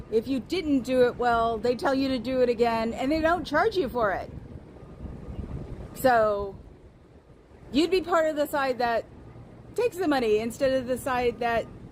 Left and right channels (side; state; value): both; identical; correlation 1.00